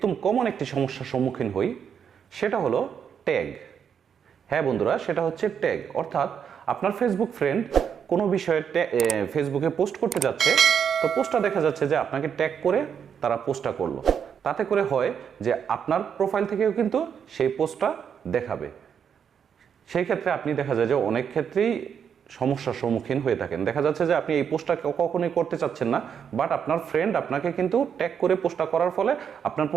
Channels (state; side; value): quieter; left; 7.6 dB